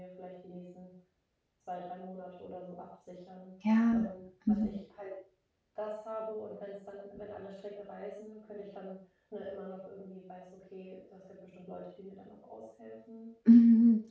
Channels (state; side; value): identical; both; correlation 1.00